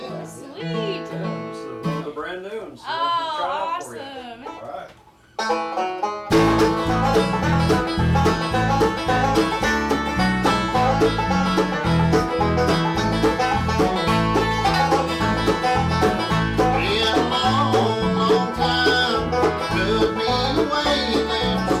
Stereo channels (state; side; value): identical; both; correlation 1.00